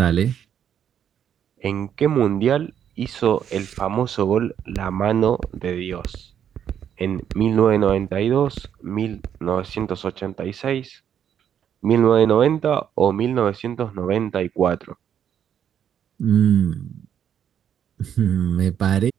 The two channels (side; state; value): left; quieter; 9.1 dB